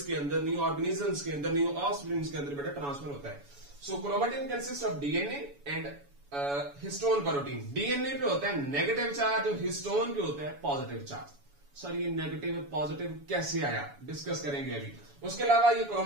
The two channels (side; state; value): left; late; 7.1 ms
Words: के अंदर, न्यू ऑर्गेनिजम्स के अंदर, न्यू ऑफस्प्रिंग्स के अंदर बेटा ट्रांसफर होता है। So chromatin consist of DNA and histone protein. DNA पे होता है नेगेटिव चार्ज और हिस्टोन पे होता है पॉजिटिव चार्ज। सर ये नेगेटिव पॉजिटिव कैसे आया, डिस्कस करेंगे अभी। उसके अलावा ये